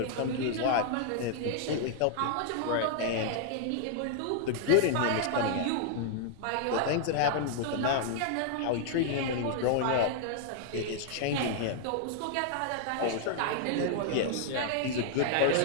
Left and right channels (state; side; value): different; both; correlation -0.01